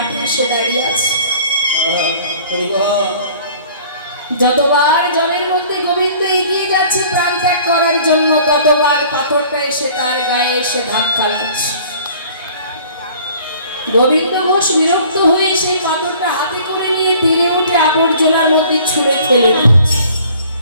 এসে দাঁড়িয়ে আছে। যতবার জলের মধ্যে গোবিন্দ এগিয়ে যাচ্ছে প্রাণ ত্যাগ করার জন্য, ততবার পাথরটা এসে তার গায়ে এসে ধাক্কা লাগছে। গোবিন্দ ঘোষ বিরক্ত হয়ে সেই পাথরটা হাতে করে ঠেলে দিচ্ছে।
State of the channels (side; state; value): both; inverted; correlation -0.51